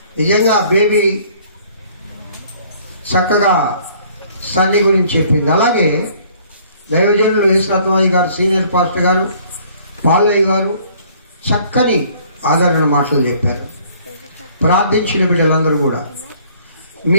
నిజంగా బేబీ చక్కగా సన్ని గురించి చెప్పింది. అలాగే దైవజనులు యేసురత్నయ్య గారు, సీనియర్ పాస్టర్ గారు, పాలయ్య గారు చక్కని ఆదరణ మాటలు చెప్పారు. ప్రార్థించిన బిడ్డలందరూ కూడా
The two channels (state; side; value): inverted; both; correlation -0.58